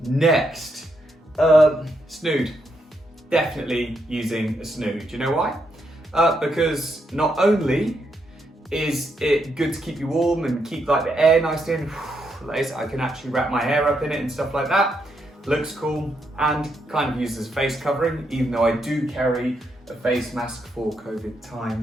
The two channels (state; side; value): normal; both; correlation 0.79